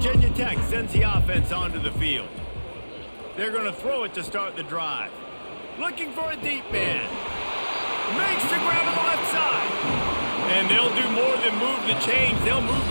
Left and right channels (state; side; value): inverted; both; correlation -1.00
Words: Tech sends the offense onto the field. They're going to throw it to start the drive. Looking for a deep man. Makes the grab on the left side. And they'll do more than move the chains. They'll move